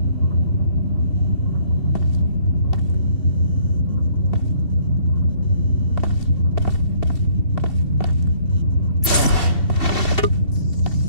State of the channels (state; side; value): late; right; 2.6 ms